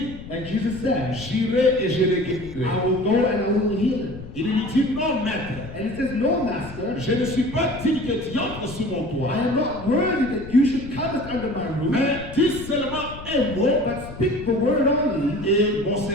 And Jesus said, j'irai et je le guérirai. I will go and I will heal him. Il lui dit, non maître, And he says, no, master, je ne suis pas digne que tu entres sous mon I toit. am not worthy that you should come under my roof, Mais dis seulement un mot but speak the word only, et mon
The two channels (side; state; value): left; noise; rumble, 14 dB below the sound